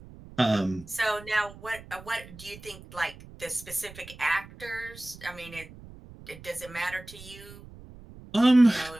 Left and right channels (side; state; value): right; noise; rumble, 18 dB below the sound